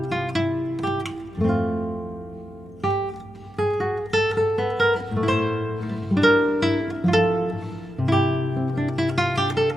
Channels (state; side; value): noise; right; hum, 25 dB below the sound